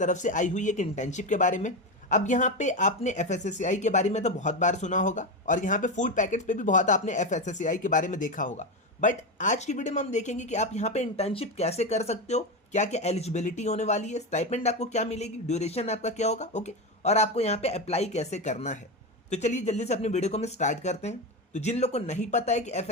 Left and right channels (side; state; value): both; normal; correlation 0.15